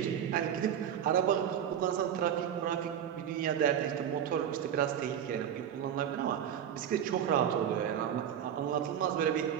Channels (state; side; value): quieter; left; 9.4 dB